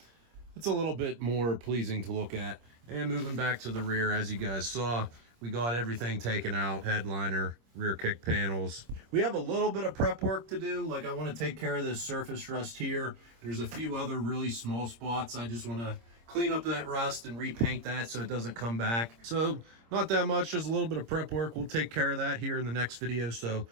it's a little bit more pleasing to look at. And moving back to the rear, as you guys saw, we got everything taken out, headliner, rear kick panels. We have a little bit of prep work to do. Like, I want to take care of this surface rust here. There's a few other really small spots. I just want to clean up that rust and repaint that so it doesn't come back. So not that much, just a little bit of prep work. We'll take care of that here in the next video. So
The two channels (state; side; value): late; left; 26 ms